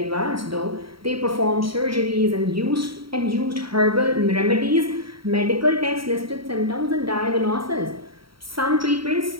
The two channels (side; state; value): left; late; 0.75 ms